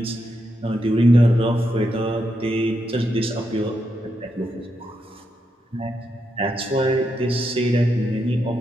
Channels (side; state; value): both; normal; correlation 0.83